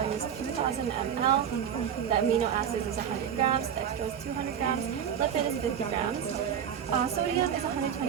is 2000 ml. The amino acids is 100 grams, dextrose is 200 grams, lipid is 50 grams. Sodium is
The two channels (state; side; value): quieter; left; 8.7 dB